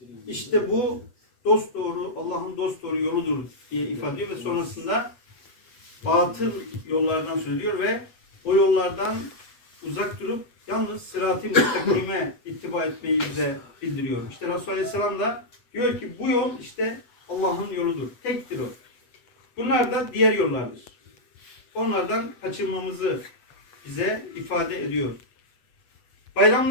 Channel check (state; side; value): late; right; 8.1 ms